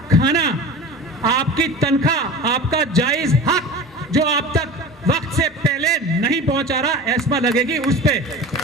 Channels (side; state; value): both; normal; correlation 0.34